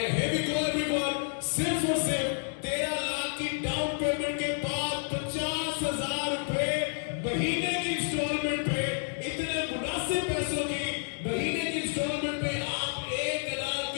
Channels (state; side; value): silent; right; 58 dB below the other